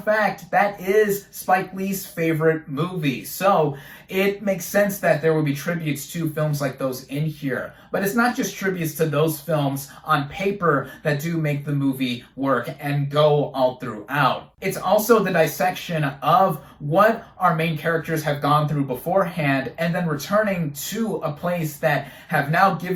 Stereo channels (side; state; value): both; identical; correlation 1.00